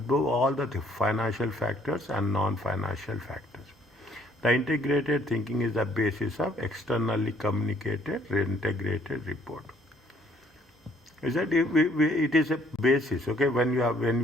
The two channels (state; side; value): normal; both; correlation 0.63